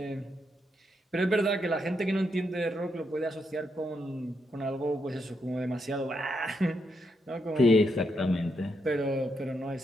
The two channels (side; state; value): both; normal; correlation 0.80